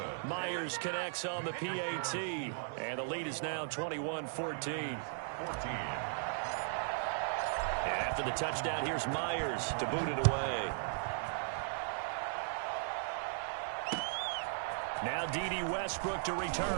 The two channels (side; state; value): left; silent; 53 dB below the other